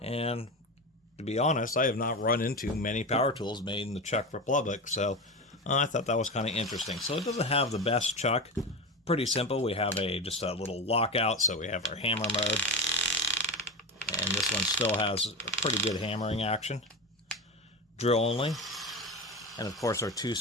And to be honest, I have not run into many power tools made in the Czech Republic, so I thought that was kind of interesting. So it doesn't have the best chuck. Pretty simple. We have just a little lockout, so we have our hammer mode. And this one still has a pretty good hammering action. Drill only. And of course our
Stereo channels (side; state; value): both; normal; correlation 0.22